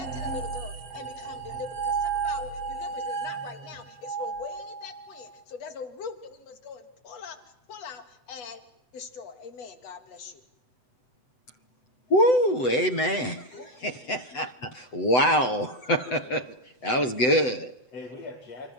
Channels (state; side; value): late; right; 7.9 ms